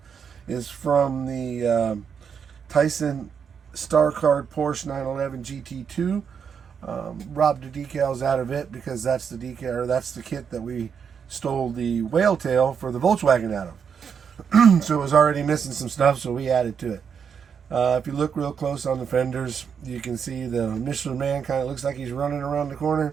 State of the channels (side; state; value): left; quieter; 6.9 dB